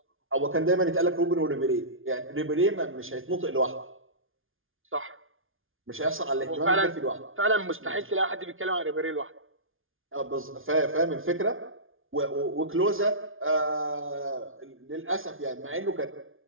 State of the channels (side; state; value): left; late; 0.59 ms